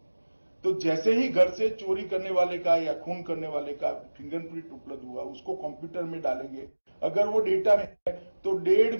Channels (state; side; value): inverted; both; correlation -1.00